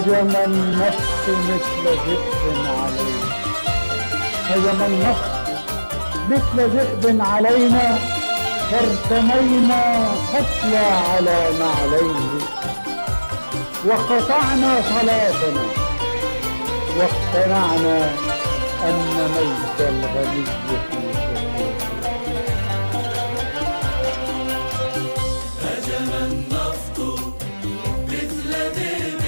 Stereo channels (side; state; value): both; inverted; correlation -1.00